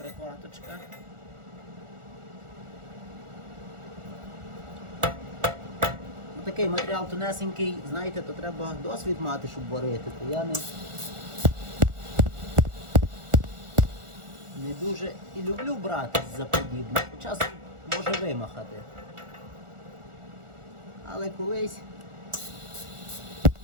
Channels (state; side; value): late; left; 1.4 ms